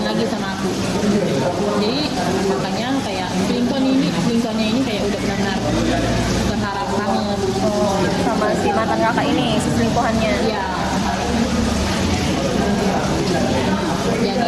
lagi sama aku. Jadi makanya kayak selingkuhannya ini kayak udah benar-benar berharap banget. Oh, sama si mantan kakak ini, si selingkuhannya. Iya.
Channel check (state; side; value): identical; both; correlation 1.00